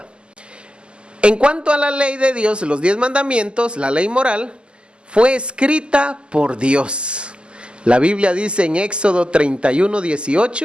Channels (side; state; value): left; late; 0.050 ms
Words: en cuanto a la ley de Dios, los 10 mandamientos, la ley moral, fue escrita por Dios. La Biblia dice en Éxodo